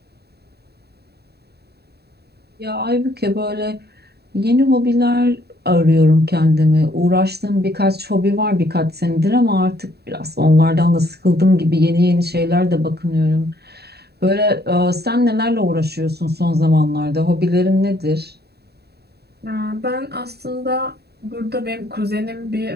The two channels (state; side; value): late; left; 0.47 ms